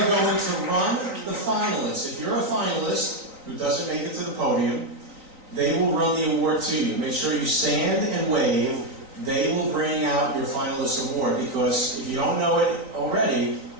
going to run the finalists. If you're a finalist who doesn't make it to the podium, they will run the award to you. Make sure you stand and wave. They will bring out your finalist award, because if you don't know it already,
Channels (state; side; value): late; left; 3.9 ms